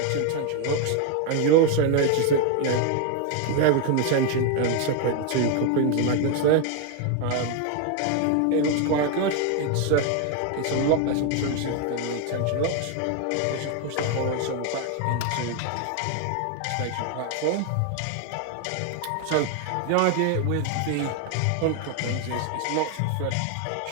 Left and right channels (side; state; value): both; different; correlation 0.01